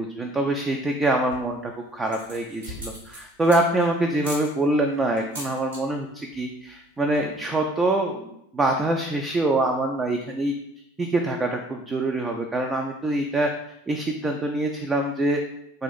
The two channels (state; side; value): normal; both; correlation 0.58